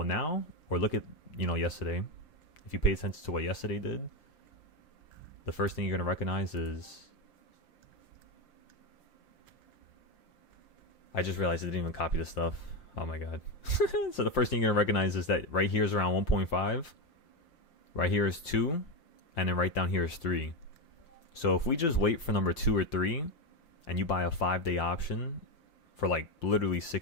now, or look at, yesterday. If you pay attention to what yesterday did, the first thing you're going to recognize is... I just realized I didn't even copy this stuff. Oh my god. So the first thing you're going to recognize is that right here is around 1.5. Right here is 2. And then right down here is 3. So if we just wait for number 2 or 3, and you buy a 5-day option for like literally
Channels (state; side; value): late; right; 5.8 ms